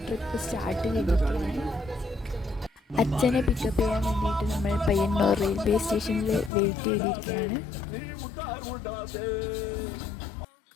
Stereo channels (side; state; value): right; drops out; at 6.5 s